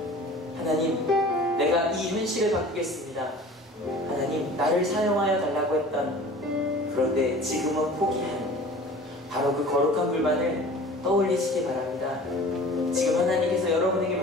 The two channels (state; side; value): normal; both; correlation 0.43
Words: 하나님, 내가 이 현실을 바꾸겠습니다. 하나님, 나를 사용하여 달라고 했던, 그런데 지금은 포기한 바로 그 거룩한 불만을 떠올리시기 바랍니다. 지금 하나님께서 여러분에게